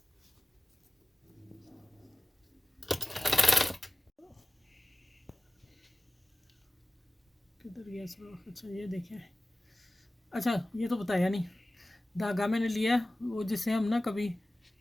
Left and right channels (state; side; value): normal; both; correlation 0.96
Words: किधर गया सुराख? अच्छा ये देखें। अच्छा ये तो बताया नहीं, धागा मैंने लिया वो जिससे हम ना कभी